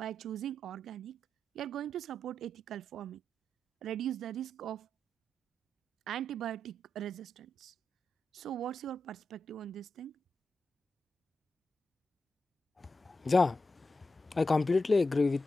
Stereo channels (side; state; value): both; normal; correlation 0.88